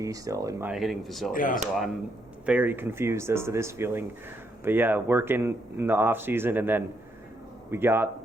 still in my hitting facility. So I'm very confused as to this feeling. But working in the off season, and then we got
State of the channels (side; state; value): both; normal; correlation 0.76